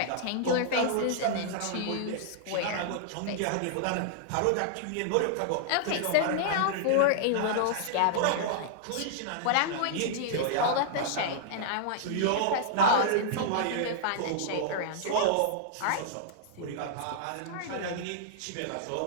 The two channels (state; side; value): different; both; correlation -0.01